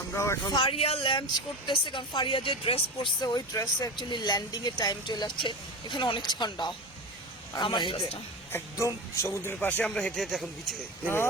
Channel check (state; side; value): normal; both; correlation 0.25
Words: আমরাও এখন ফারিয়া ল্যান্ড করতেছে। কারণ ফারিয়া যে ড্রেস পরছে ওই ড্রেসে অ্যাকচুয়ালি ল্যান্ডিং এর টাইম চলে আসছে। এখানে অনেক ঠান্ডা। আর আমরা আমার হেঁটে ড্রেসটা একদম সমুদ্রের পাশে আমরা হেঁটে হেঁটে এখন বিচে নেমে